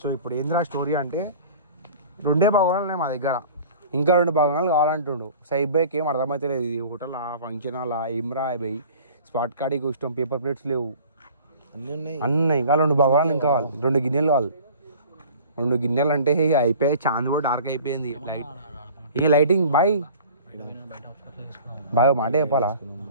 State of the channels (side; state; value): both; inverted; correlation -0.45